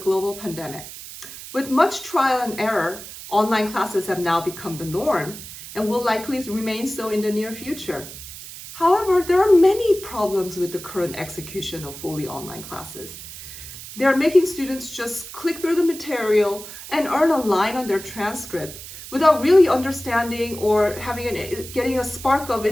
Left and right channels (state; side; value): noise; right; hiss, 13 dB below the sound